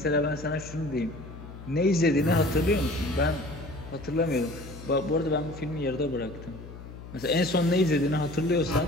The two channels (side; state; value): left; noise; hum, 14 dB below the sound